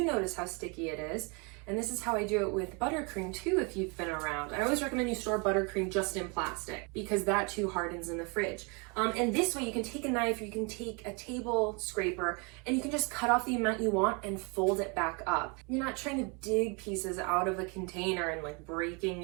notice how sticky it is. And this is how I do it with buttercream too, if you've been around. I always recommend you store buttercream just in plastic because that too hardens in the fridge. And this way you can take a knife, or you can take a table scraper, and you can just cut off the amount you want and fold it back up. You're not trying to dig pieces out of a container and like breaking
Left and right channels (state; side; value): quieter; left; 32.0 dB